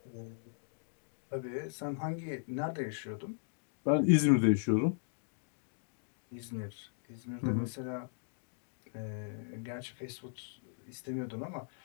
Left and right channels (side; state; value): right; silent; digital silence